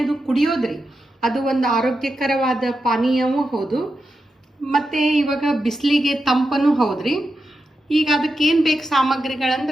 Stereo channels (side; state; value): both; normal; correlation 0.88